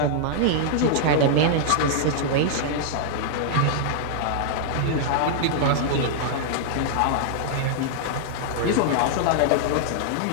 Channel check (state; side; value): different; both; correlation -0.01